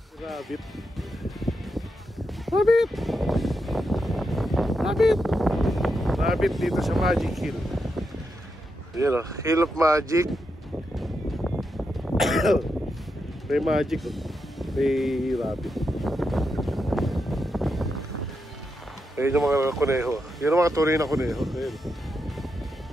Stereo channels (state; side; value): normal; both; correlation 0.85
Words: Rabbit. Rabbit! Rabbit! Rabbit dito sa Magic Hill. Yan o, Hill of Magic. May magic o. May rabbit. Ayun yung mga kuneho. Yun yung mga tunay na kuneho. Ayun.